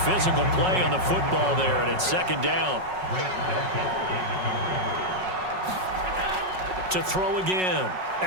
Physical play on the football there, and it's 2nd down. To throw again.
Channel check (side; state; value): left; late; 5.4 ms